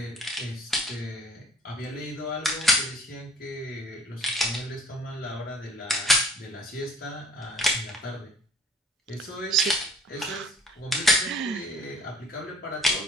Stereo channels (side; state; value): both; normal; correlation 0.52